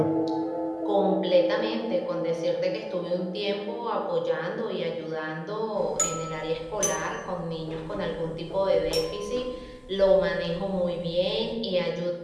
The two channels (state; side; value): identical; both; correlation 1.00